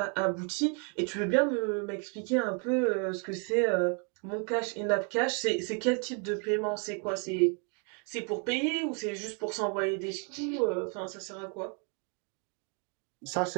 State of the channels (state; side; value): quieter; left; 37.8 dB